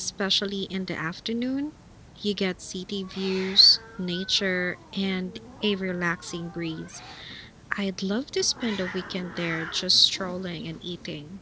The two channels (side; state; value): both; identical; correlation 1.00